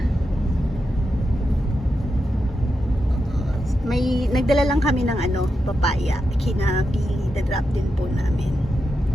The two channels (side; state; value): both; normal; correlation 0.87